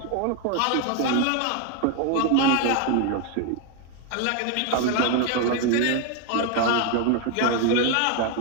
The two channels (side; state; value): both; different; correlation 0.01